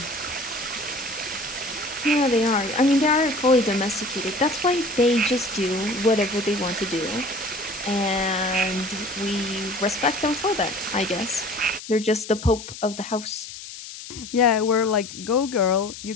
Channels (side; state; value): left; noise; hiss, 12 dB below the sound